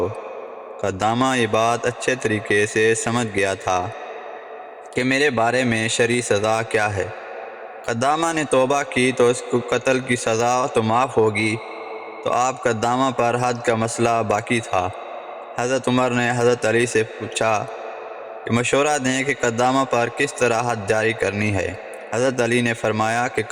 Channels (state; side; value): identical; both; correlation 1.00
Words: قدامہ یہ بات اچھے طریقے سے سمجھ گیا تھا کہ میرے بارے میں شرعی سزا کیا ہے۔ قدامہ نے توبہ کی تو اس کو قتل کی سزا تو معاف ہوگی، تو آپ قدامہ پر حد کا مسئلہ باقی تھا۔ حضرت عمر نے حضرت علی سے پوچھا کہ مشورہ دیں کہ قدامہ پر کس طرح حد جاری کرنی ہے۔ حضرت علی نے فرمایا کہ